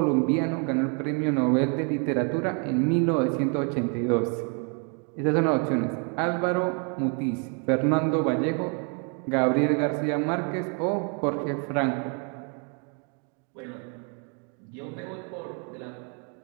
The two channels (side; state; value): left; quieter; 37.9 dB